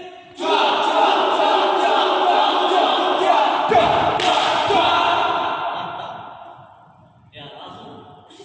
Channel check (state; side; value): identical; both; correlation 1.00